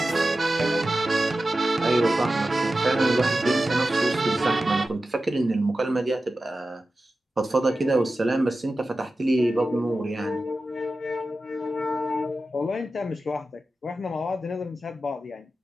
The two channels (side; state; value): both; normal; correlation 0.94